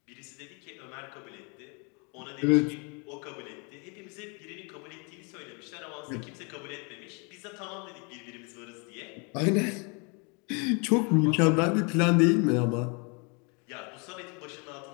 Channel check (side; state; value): right; quieter; 33.6 dB